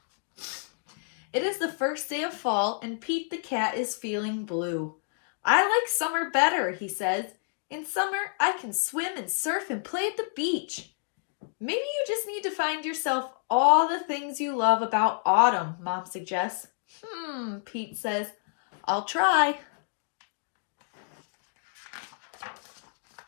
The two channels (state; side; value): silent; right; digital silence